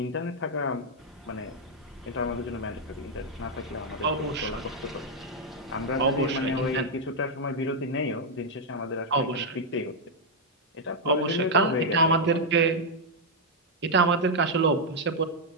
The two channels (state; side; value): normal; both; correlation -0.02